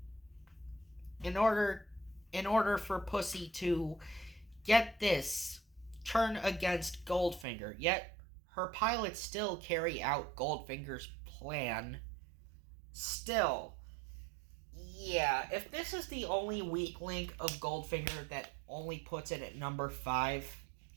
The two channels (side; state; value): left; drops out; at 7.5 s